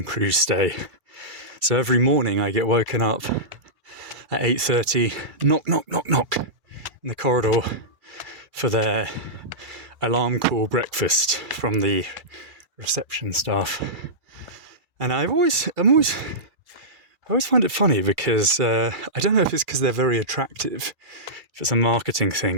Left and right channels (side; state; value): left; late; 2.3 ms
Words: crew stay. So every morning I get woken up at 8:30, knock, in the corridor for their alarm call breakfast from the reception staff. And I always find it funny because I don't know if it's because they're very attractive, if it's a marketing